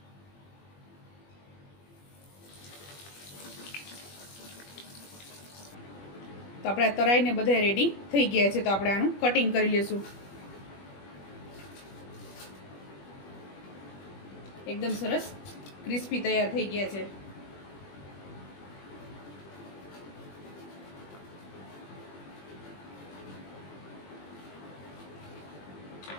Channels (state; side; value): late; right; 21 ms